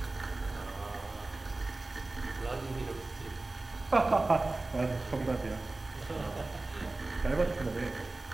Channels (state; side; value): quieter; left; 3.1 dB